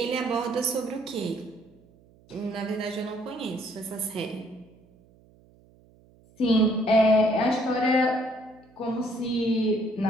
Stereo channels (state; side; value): noise; right; hum, 29 dB below the sound